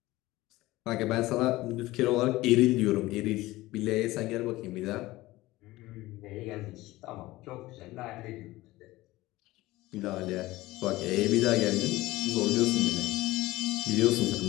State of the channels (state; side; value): quieter; right; 18.5 dB